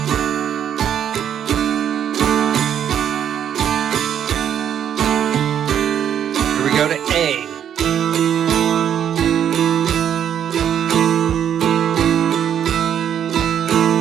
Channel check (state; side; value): quieter; left; 9.3 dB